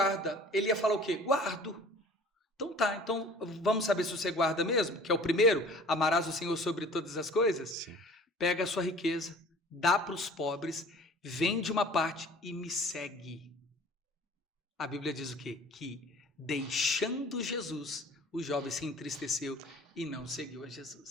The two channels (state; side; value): normal; both; correlation 0.47